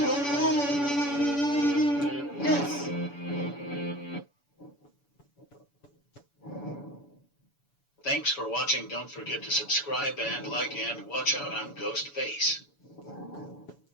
Yes. Thanks for watching. Don't forget to subscribe and like and watch out on Ghostface.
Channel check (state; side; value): late; right; 7.0 ms